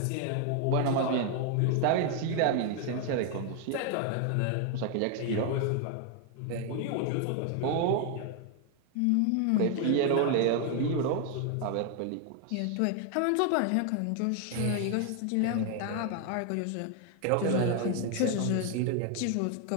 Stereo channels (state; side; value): different; both; correlation 0.00